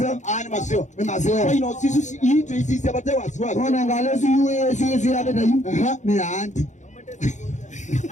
Ni maseo. Ni maseo. Kwa ino sisi hii sisi abate wasiwasi. Ona ngalezu yuwe sisi abata yu. Ni anti.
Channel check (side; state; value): right; late; 0.35 ms